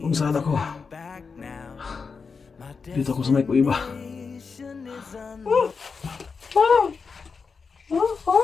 kung saan ako. Dito ako sa may kuiba.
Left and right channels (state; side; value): quieter; right; 5.1 dB